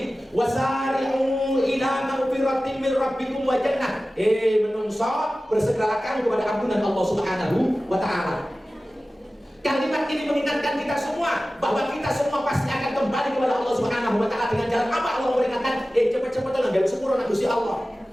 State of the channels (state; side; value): normal; both; correlation 0.96